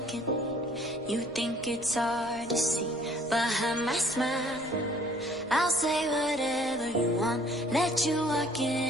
You think it's hard to see behind my smile. I'll say whatever you want, let you walk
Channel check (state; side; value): noise; left; rumble, 23 dB below the sound